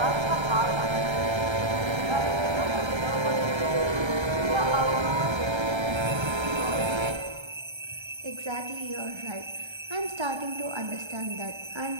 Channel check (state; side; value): late; left; 1.3 ms